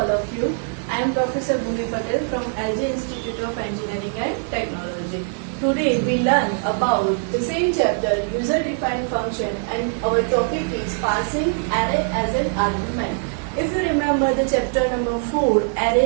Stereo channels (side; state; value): left; silent; 64 dB below the other